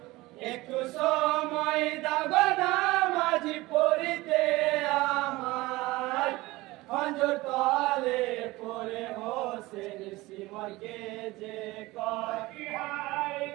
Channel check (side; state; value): left; quieter; 20.1 dB